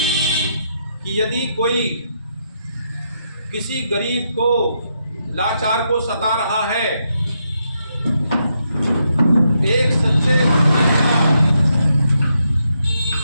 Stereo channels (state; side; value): inverted; both; correlation -0.80